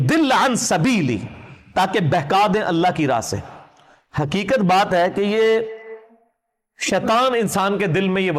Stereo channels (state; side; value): identical; both; correlation 1.00